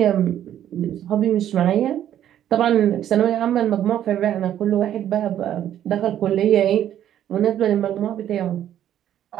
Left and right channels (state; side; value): quieter; left; 11.0 dB